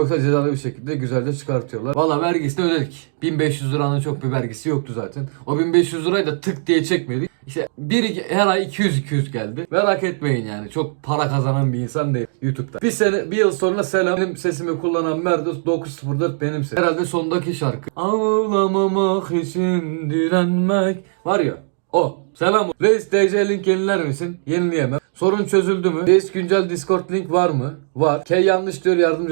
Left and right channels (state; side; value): silent; left; digital silence